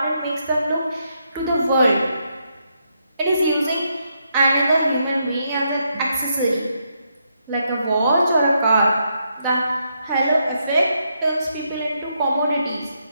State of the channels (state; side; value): inverted; both; correlation -0.79